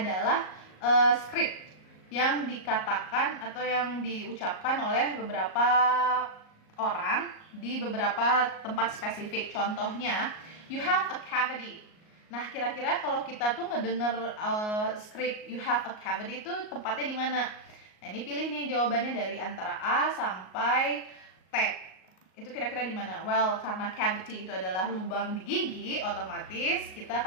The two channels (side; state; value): right; late; 38 ms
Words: script yang dikatakan atau yang diucapkan oleh beberapa orang di beberapa tempat spesifik. Contohnya, you have a cavity. Nah, kira-kira kalau kita tuh ngedenger script you have a cavity itu tempatnya di mana? Nah, ini pilih nih jawabannya dari antara A sampai T. Itu kira-kira di mana? Well, karena cavity itu adalah lubang di gigi, otomatis kita